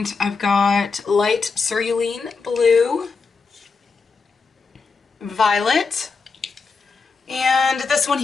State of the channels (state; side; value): quieter; right; 4.7 dB